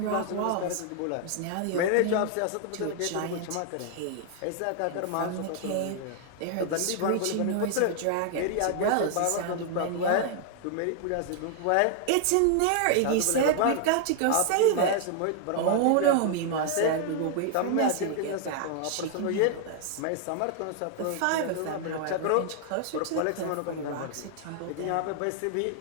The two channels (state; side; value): different; both; correlation 0.00